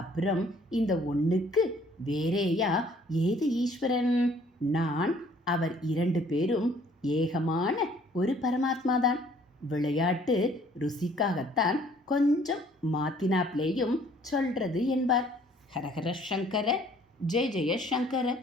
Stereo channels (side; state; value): both; normal; correlation 0.59